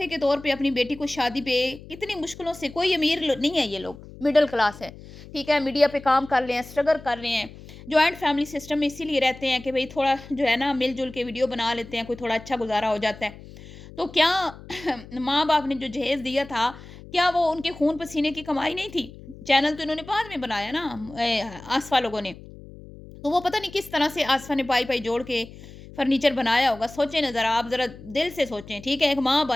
के तौर पे अपनी बेटी को शादी पे कितनी मुश्किलों से, कोई अमीर नहीं है ये लोग, मिडिल क्लास है, ठीक है, मीडिया पे काम कर रहे हैं, स्ट्रगल कर रहे हैं, जॉइंट फैमिली सिस्टम में इसीलिए रहते हैं कि भाई थोड़ा जो है ना मिलजुल के वीडियो बना लेते हैं, कोई थोड़ा अच्छा गुजारा हो जाता है। तो क्या माँ बाप ने जो जहेज दिया था, क्या वो उनके खून पसीने की कमाई नहीं थी? चैनल तो इन्होंने बाद में बनाया ना, आसफा लोगों ने, तो वो पता नहीं किस तरह से आसफा ने पाई-पाई जोड़ के फर्नीचर बनाया होगा। सोचें ना ज़रा, आप ज़रा दिल से सोचें, ठीक है? एक माँ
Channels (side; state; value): left; noise; hum, 17 dB below the sound